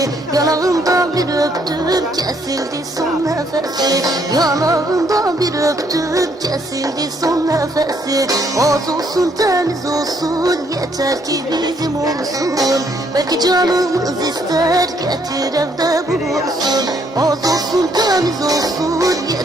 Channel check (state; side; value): normal; both; correlation 0.69